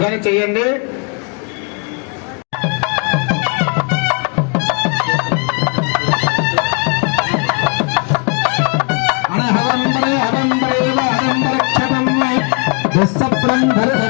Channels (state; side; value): quieter; right; 36.2 dB